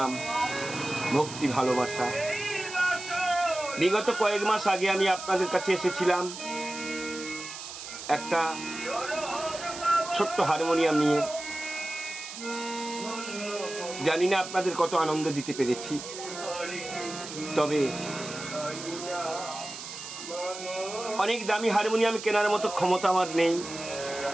ভক্তি, ভালোবাসা। বিগত কয়েক মাস আগে আমি আপনাদের কাছে এসেছিলাম একটা ছোট্ট হারমোনিয়াম নিয়ে। জানি না আপনাদের কত আনন্দ দিতে পেরেছি, তবে অনেক দামি হারমোনিয়াম কেনার মতো ক্ষমতা আমার নেই।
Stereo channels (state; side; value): noise; right; hiss, 10 dB below the sound